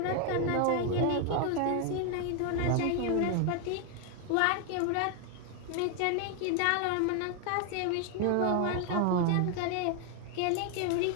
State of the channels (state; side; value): different; both; correlation 0.00